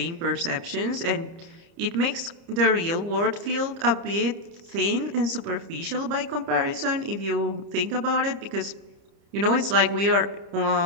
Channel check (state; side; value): late; left; 30 ms